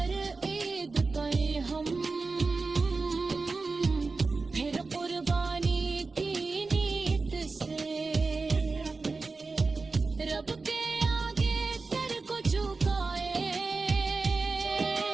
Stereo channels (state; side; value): quieter; left; 4.0 dB